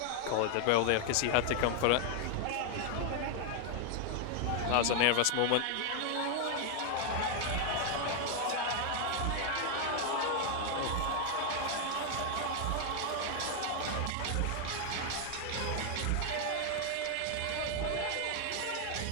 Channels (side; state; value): both; different; correlation 0.00